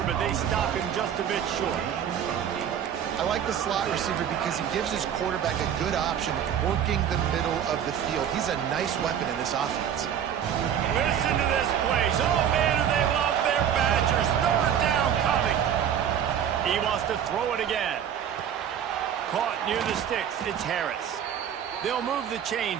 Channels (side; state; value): left; quieter; 9.1 dB